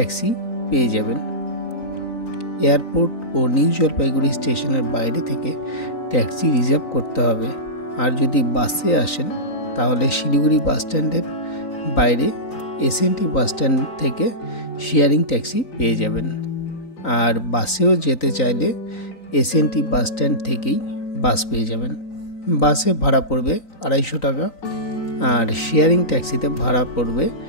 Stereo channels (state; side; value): late; right; 3.9 ms